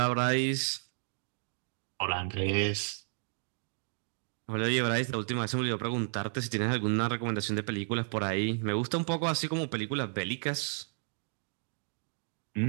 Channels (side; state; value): left; silent; 56 dB below the other